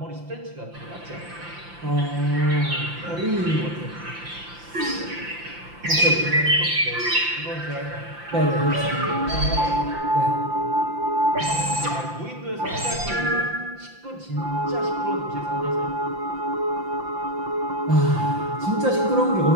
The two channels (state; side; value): late; left; 5.8 ms